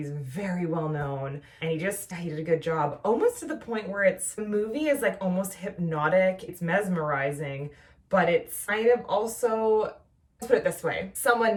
very well known and he did a good job. Almost to the point where the movie is like almost hypnotic. It's mesmerizing, but it's kind of also, let's put it this way.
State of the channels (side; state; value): both; identical; correlation 1.00